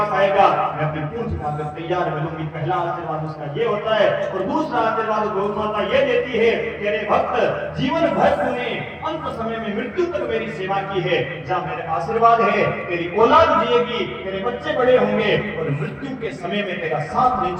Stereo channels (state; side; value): identical; both; correlation 1.00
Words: आएगा मैं अपनी पूंछ उठाकर तैयार मिलूंगी। पहला आशीर्वाद उसका ये होता है। और दूसरा आशीर्वाद गौ माता ये देती है, तेरे भक्त जीवन भर तूने अंत समय में मृत्यु तक मेरी सेवा की है, जहां मेरे आशीर्वाद है तेरी औलाद जिएगी, तेरे बच्चे बड़े होंगे और मृत्यु के समय में तेरा साथ नहीं